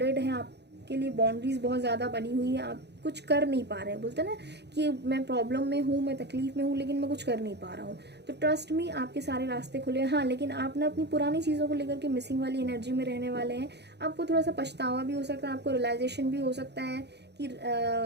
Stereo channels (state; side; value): late; left; 0.49 ms